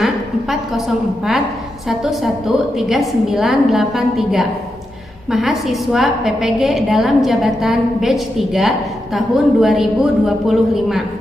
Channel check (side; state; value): both; normal; correlation 0.86